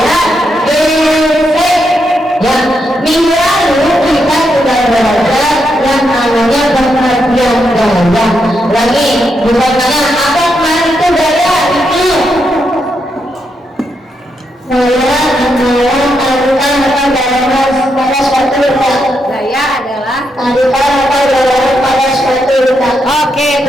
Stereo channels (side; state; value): both; normal; correlation 0.81